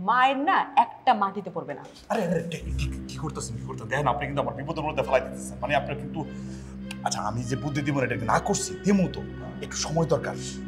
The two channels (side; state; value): both; identical; correlation 1.00